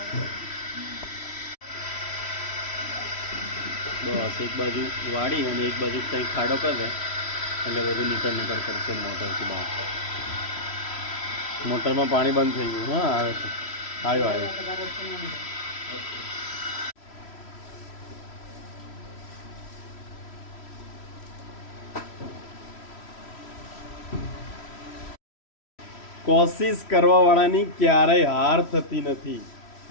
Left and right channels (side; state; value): right; late; 3.1 ms